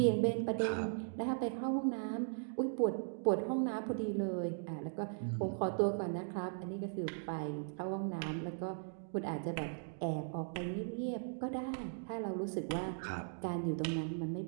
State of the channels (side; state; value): left; silent; digital silence